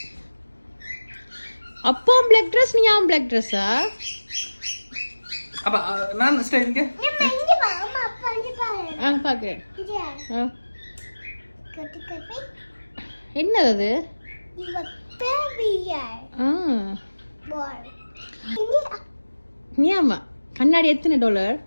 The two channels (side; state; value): both; inverted; correlation -1.00